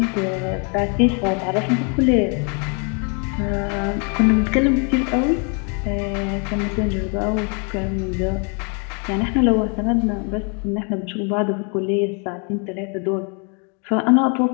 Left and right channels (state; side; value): quieter; right; 37.2 dB